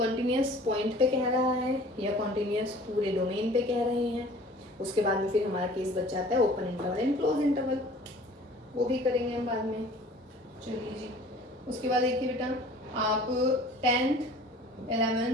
पॉइंट पे कह रहा है या कॉन्टिन्यूस पूरे डोमेन पे कह रहे हैं। उसके बाद में फिर हमारा केस बच जाता है open interval and close interval, वो भी करेंगे हम बाद में। चलिए जी, उसके बाद देखिए बेटा आप 10th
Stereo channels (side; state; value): both; normal; correlation 0.48